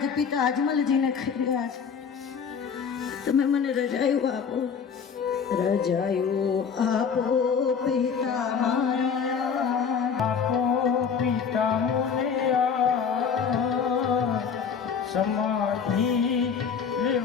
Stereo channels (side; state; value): right; quieter; 6.5 dB